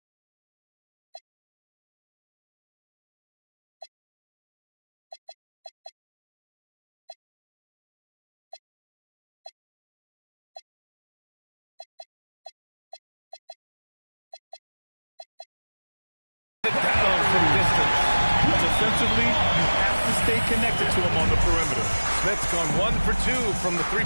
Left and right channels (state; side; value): inverted; both; correlation -1.00